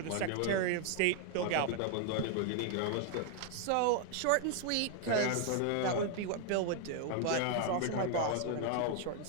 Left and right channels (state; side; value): different; both; correlation 0.00